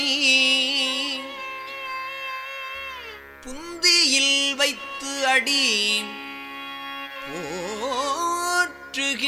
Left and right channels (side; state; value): both; identical; correlation 1.00